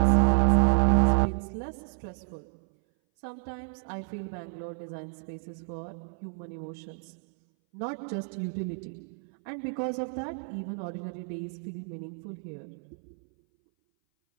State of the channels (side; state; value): left; silent; 58 dB below the other